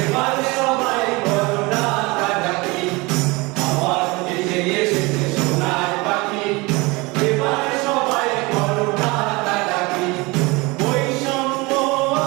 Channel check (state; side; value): quieter; left; 24.7 dB